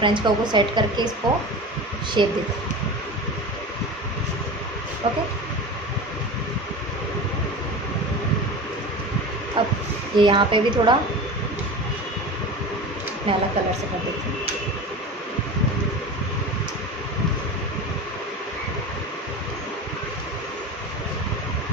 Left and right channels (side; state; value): both; normal; correlation 0.31